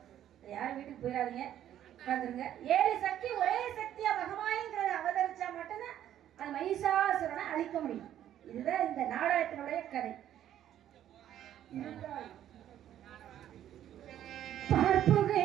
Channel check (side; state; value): left; quieter; 11.3 dB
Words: யாரும் வீட்டுக்கு போயிடாதீங்க, உட்காந்துருங்க. 7 சக்தி ஒரே சக்தியா மகமாய்ங்கிறத அவதரிச்சா மட்டும்தான் அந்த மகிஷாசுரனை அழிக்க முடியும். இதுதான் இந்த நாடகத்தினுடைய கதை.